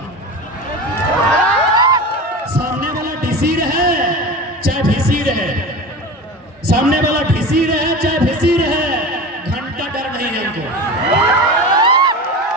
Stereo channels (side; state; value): both; normal; correlation 0.30